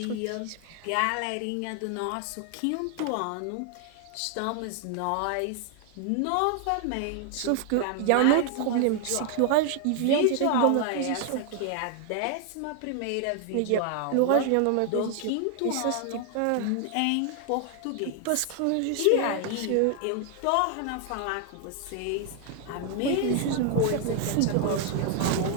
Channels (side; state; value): both; different; correlation 0.00